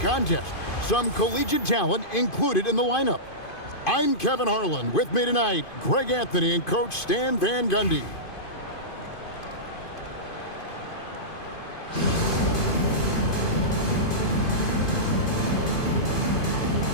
Some collegiate talent included in the lineup. I'm Kevin Harlan. With me tonight, Greg Anthony and Coach Stan Van Gundy.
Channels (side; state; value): right; late; 2.5 ms